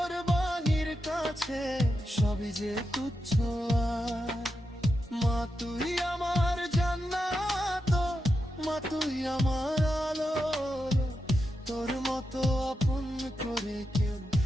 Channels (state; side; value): normal; both; correlation 0.87